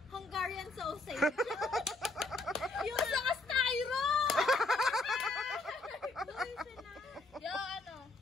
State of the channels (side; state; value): right; quieter; 3.2 dB